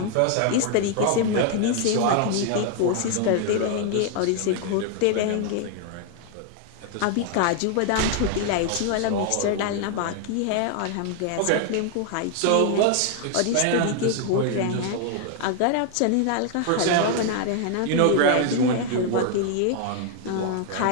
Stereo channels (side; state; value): both; different; correlation 0.00